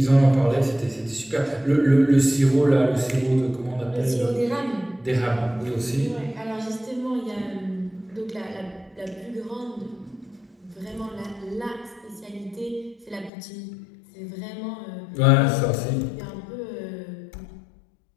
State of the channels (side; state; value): right; drops out; at 13.3 s